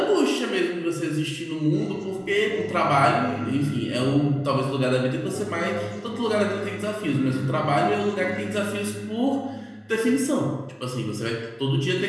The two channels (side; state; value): both; identical; correlation 1.00